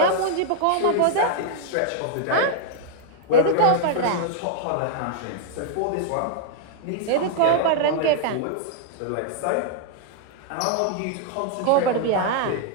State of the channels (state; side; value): different; both; correlation -0.01